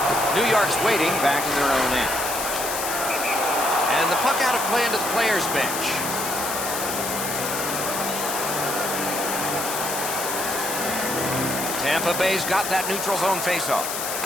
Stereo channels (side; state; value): left; noise; hiss, 4 dB below the sound